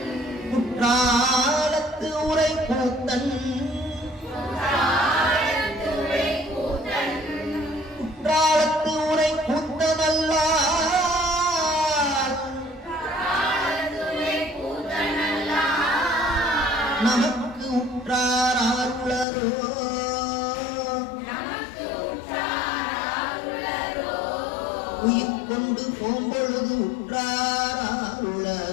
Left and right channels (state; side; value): drops out; right; at 19.2 s